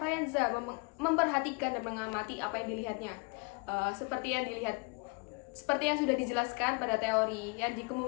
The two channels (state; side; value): quieter; right; 31.9 dB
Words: memperhatikan dan mengamati apa yang dilihatnya. Seperti yang sudah dijelaskan pada teori yang